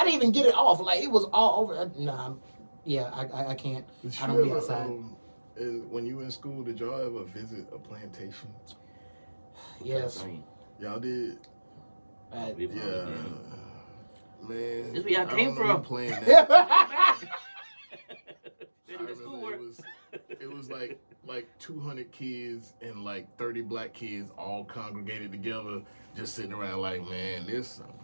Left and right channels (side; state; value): both; inverted; correlation -1.00